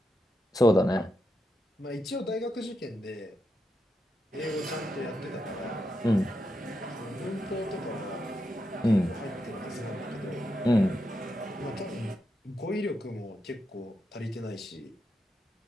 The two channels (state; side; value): normal; both; correlation 0.85